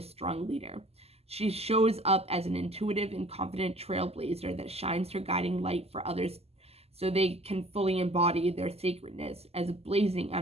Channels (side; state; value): left; late; 0.29 ms